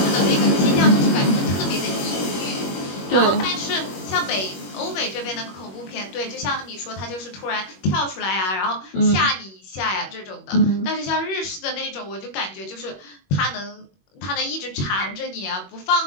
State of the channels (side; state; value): right; late; 21 ms